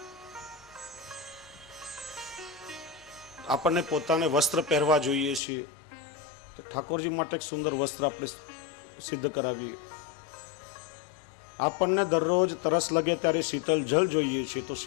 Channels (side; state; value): right; drops out; at 5.4 s